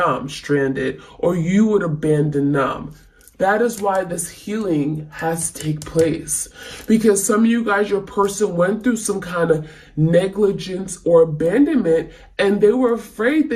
stranded or you would abandon them. That is why this healing has to take place. Because some of you guys, your person went through some kind of negligence or abandonment and they were afraid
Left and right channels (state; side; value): identical; both; correlation 1.00